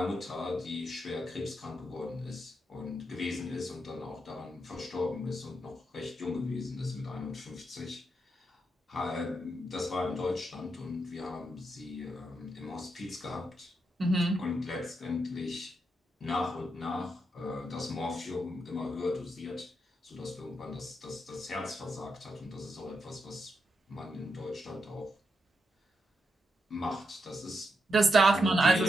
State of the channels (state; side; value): normal; both; correlation 0.82